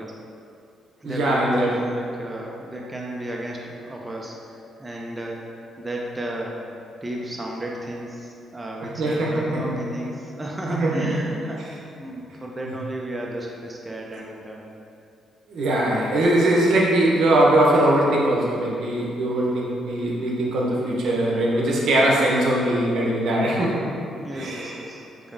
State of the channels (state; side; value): normal; both; correlation 0.74